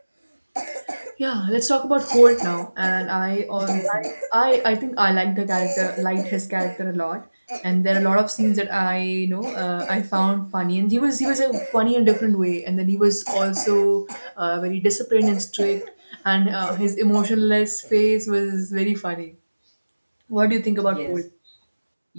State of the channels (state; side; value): inverted; both; correlation -1.00